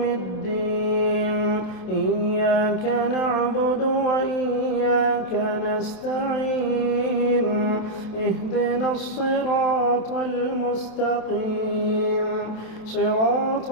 الدين إياك نعبد وإياك نستعين اهدنا الصراط المستقيم صراط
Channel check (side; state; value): right; late; 27 ms